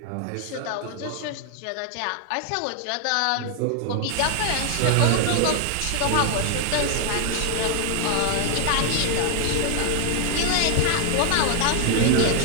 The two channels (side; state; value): both; different; correlation 0.00